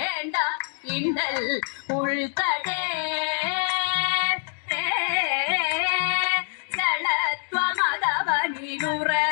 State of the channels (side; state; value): right; silent; 56 dB below the other